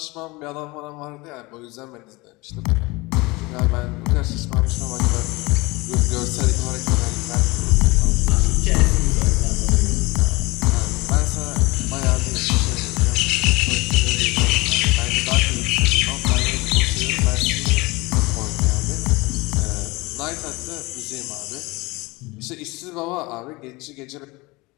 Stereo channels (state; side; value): quieter; right; 23.5 dB